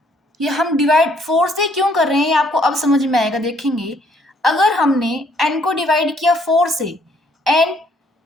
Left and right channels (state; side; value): normal; both; correlation 0.66